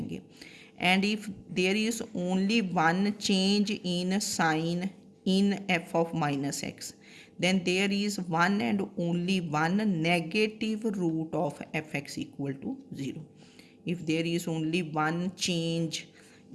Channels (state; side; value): identical; both; correlation 1.00